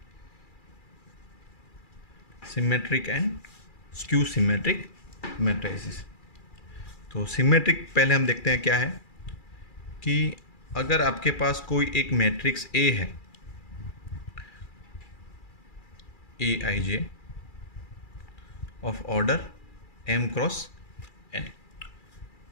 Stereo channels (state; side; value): late; right; 2.4 ms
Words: Symmetric and skew symmetric matrices. तो सिमेट्रिक पहले हम देखते हैं क्या है कि अगर आपके पास कोई एक मैट्रिक्स ए है, A I J of order M cross N,